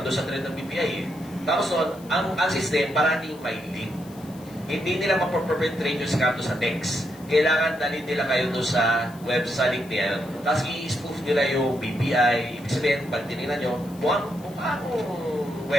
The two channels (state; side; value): noise; left; hiss, 23 dB below the sound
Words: sa trend ng BPI eh. Tapos doon, ang system parating may link. Hindi nila mapoperpetrate yung scam sa text. Kailangan dalhin nila kayo doon sa website niya. Tapos i-spoof nila yung BPI. Ibig sabihin, pag tinignan nyo, mukha